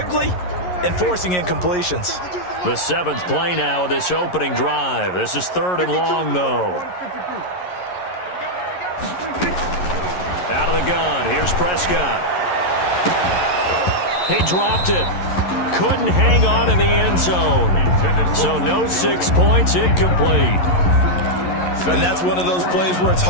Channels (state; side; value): late; right; 11 ms